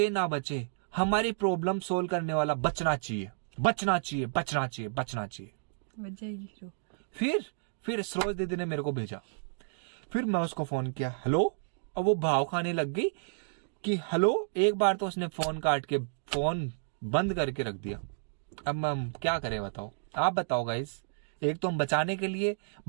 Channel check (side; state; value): left; silent; digital silence